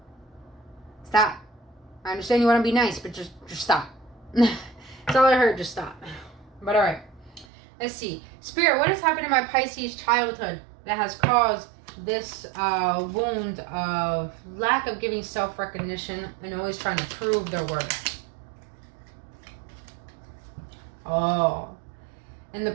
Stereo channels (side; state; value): left; drops out; at 7.5 s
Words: Stop. I understand you want to be nice, but just stop. That's all I heard. Just stop. But alright. Let's see. Spirit, what has happened in my Pisces childhood that has caused this wound of lack of giving self-recognition and always trying to prove their worth? Oh. In the